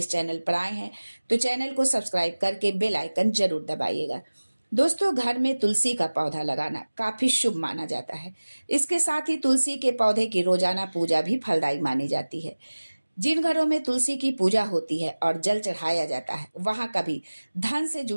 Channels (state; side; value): inverted; both; correlation -1.00